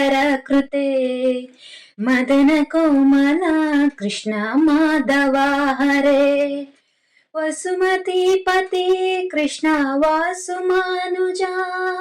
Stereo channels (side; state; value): both; identical; correlation 1.00